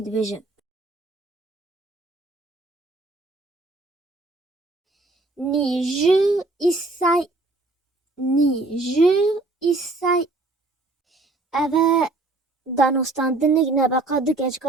دبیجه نی جی ایسای اوه دانستاندنگ نبقا دو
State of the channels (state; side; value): quieter; left; 3.1 dB